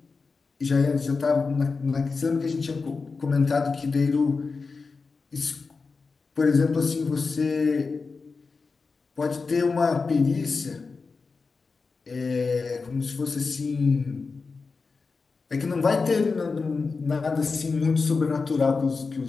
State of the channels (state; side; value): quieter; right; 4.5 dB